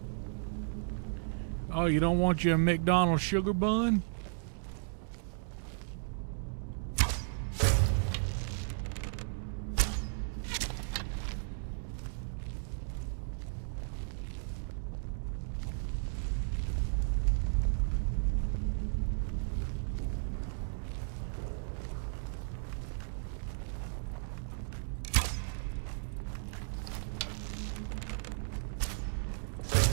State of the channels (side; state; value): left; silent; digital silence